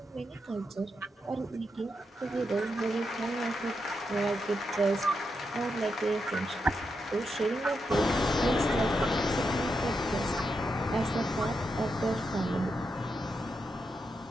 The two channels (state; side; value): normal; both; correlation 0.84